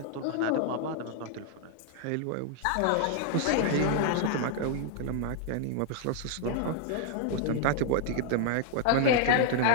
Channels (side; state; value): both; different; correlation 0.00